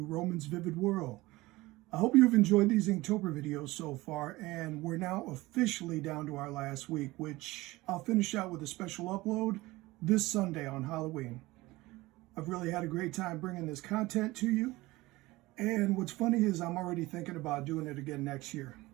Roman's Vivid World. I hope you've enjoyed these Inktober videos so far, and we're now officially down to our last week, which I'll finish out with a special upload this Sunday on Halloween. I've really had a great time bringing this content to you, and what's funny is I'm already thinking about doing it again next year,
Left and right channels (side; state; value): left; quieter; 19.9 dB